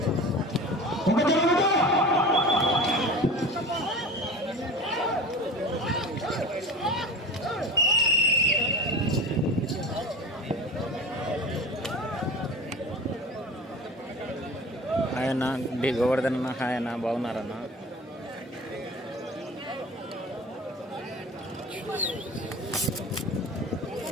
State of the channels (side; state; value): both; normal; correlation 0.35